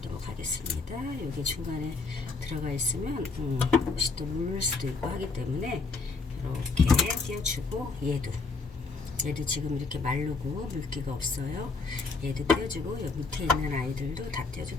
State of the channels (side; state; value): right; quieter; 4.2 dB